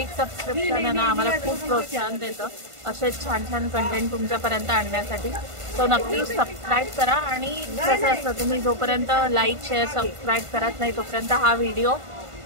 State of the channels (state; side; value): late; left; 1.5 ms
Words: सबस्क्रिप्शन आहे ना आम्हाला खूप प्रोत्साहन देतं असेच छान छान कंटेंट तुमच्यापर्यंत आणण्यासाठी. सो नक्की सबस्क्राईब करा. आणि कसं असतं, तुम्ही जोपर्यंत लाईक शेअर सबस्क्राईब करत नाही तोपर्यंत हा व्हिडिओ